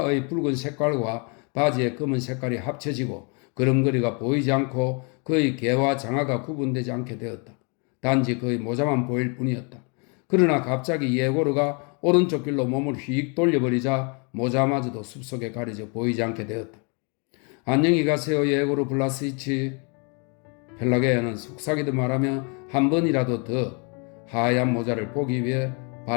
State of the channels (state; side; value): quieter; right; 35.4 dB